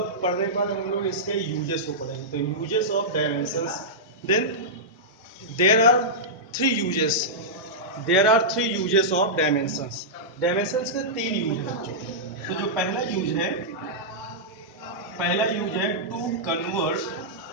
के बाद हम लोग इसके यूजेस को पढ़ेंगे। तो uses of dimensions, then there are three uses of dimensions. Dimensions के तीन यूज है बच्चों। तो जो पहला यूज है to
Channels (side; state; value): both; normal; correlation -0.11